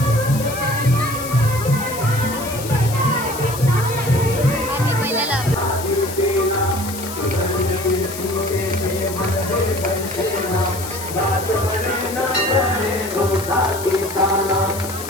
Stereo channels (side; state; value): left; noise; hiss, 10 dB below the sound